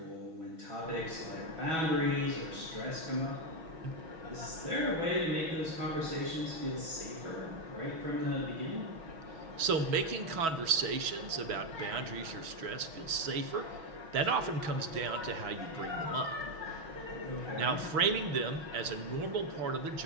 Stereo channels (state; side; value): late; left; 6.2 ms